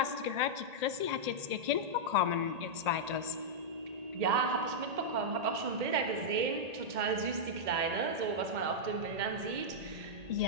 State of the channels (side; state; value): left; late; 1.8 ms